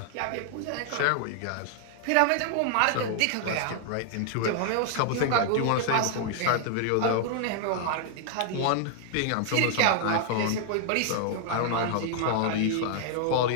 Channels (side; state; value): both; different; correlation 0.00